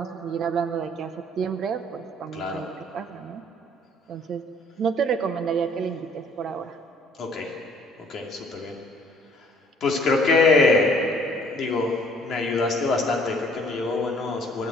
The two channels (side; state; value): both; normal; correlation 0.59